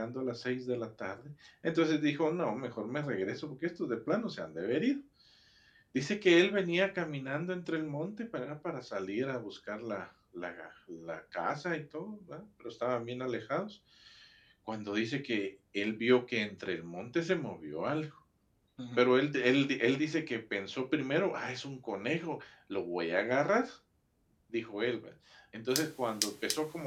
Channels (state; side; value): identical; both; correlation 1.00